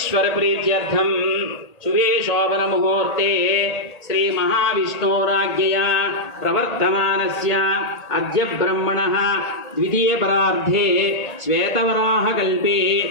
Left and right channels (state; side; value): late; right; 1.8 ms